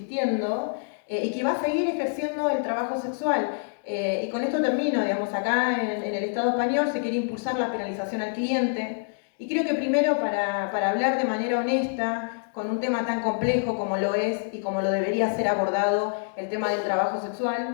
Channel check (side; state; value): right; silent; digital silence